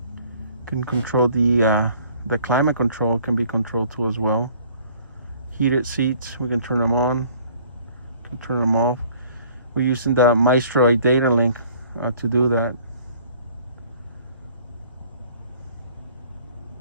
Can control the climate control can be controlled too as well. Heated seats, we can turn them on, can turn them off. We're using the Maestro data link to do that.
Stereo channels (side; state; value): both; inverted; correlation -0.56